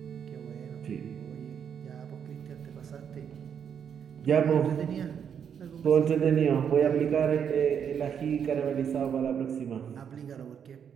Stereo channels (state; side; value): quieter; left; 7.9 dB